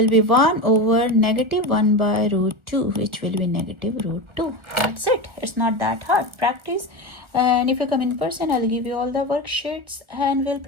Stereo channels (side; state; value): left; late; 1.4 ms